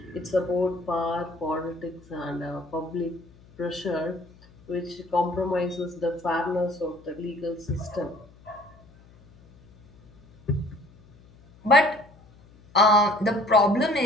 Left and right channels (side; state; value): left; noise; hum, 26 dB below the sound